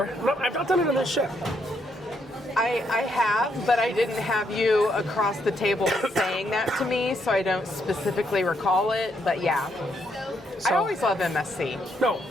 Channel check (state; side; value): normal; both; correlation 0.76